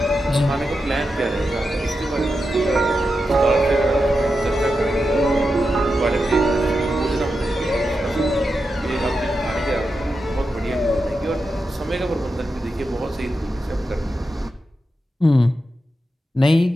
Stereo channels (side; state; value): both; normal; correlation 0.88